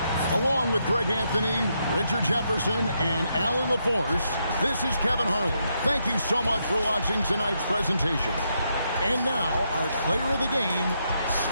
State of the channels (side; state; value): both; inverted; correlation -0.79